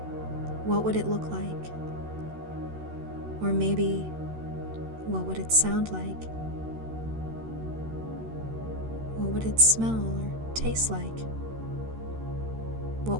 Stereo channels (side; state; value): left; late; 13 ms